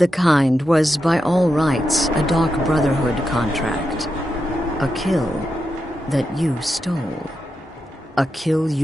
Kind was, by all rights, a Dark Brotherhood contract. A kill that you stole. A kill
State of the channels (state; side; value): normal; both; correlation 0.87